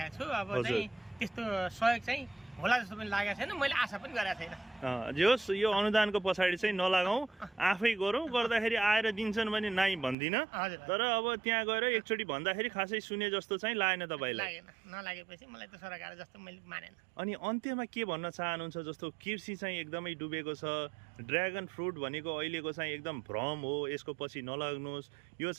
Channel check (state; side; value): drops out; left; at 10.2 s